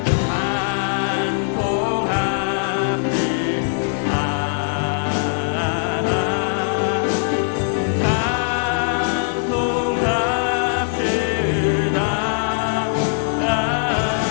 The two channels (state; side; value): silent; right; digital silence